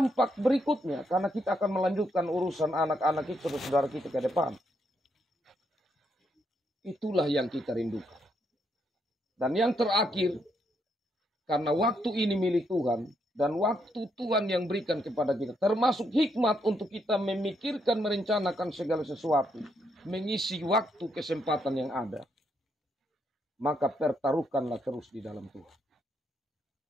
berikutnya. Karena kita akan melanjutkan urusan anak-anak itu, saudara kita ke depan. Itulah yang kita rindukan. Dan yang terakhir, karena waktu ini milik Tuhan, dan waktu Tuhan yang berikan kepada kita, termasuk hikmat untuk kita memikirkan, merencanakan segala sesuatu, mengisi waktu kesempatan yang ada, maka pertaruhkanlah terus di dalam Tuhan.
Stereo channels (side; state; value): both; normal; correlation 0.77